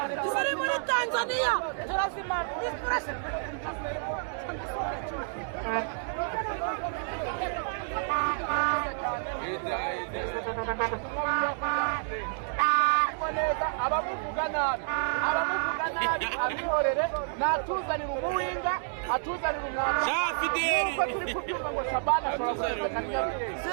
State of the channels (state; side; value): silent; left; digital silence